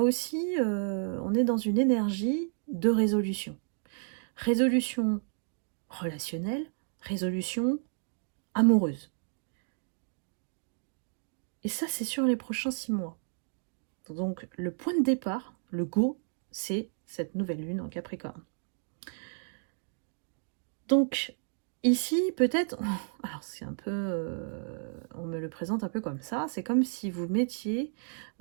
aussi, on est dans une énergie de résolution. Résolution relationnelle, résolution amoureuse. Et ça, c'est sur les prochains 6 mois. Donc, le point de départ, le go, c'est cette nouvelle lune en Capricorne. Donc, ici, peut-être, alors c'est un peu, on me le présente un peu comme ça, c'est comme si vous mettiez,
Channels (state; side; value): silent; left; digital silence